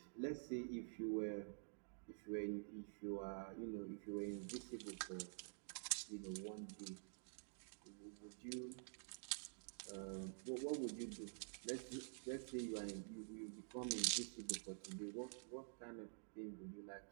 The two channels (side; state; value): left; silent; digital silence